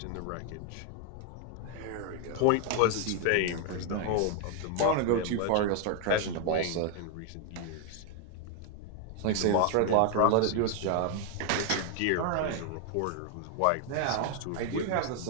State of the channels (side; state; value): both; different; correlation 0.00